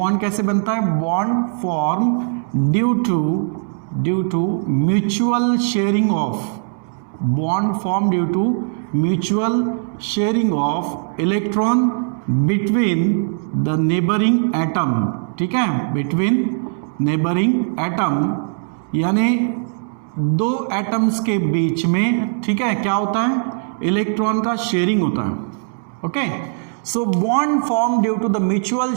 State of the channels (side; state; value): left; silent; digital silence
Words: कैसे बनता है? Bond form due to mutual sharing of bond form due to mutual sharing of electron between the neighbouring atom. ठीक है, बिटवीन नेबरिंग एटम, यानी दो एटम्स के बीच में, ठीक है, क्या होता है? इलेक्ट्रॉन का शेयरिंग होता है। Okay, so bond form due to the mutual